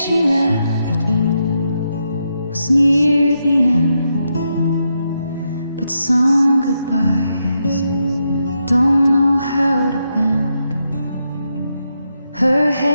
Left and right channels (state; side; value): inverted; both; correlation -0.83